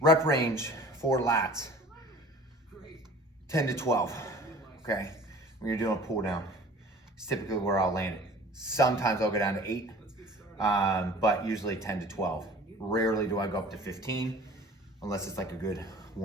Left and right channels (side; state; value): both; normal; correlation 0.46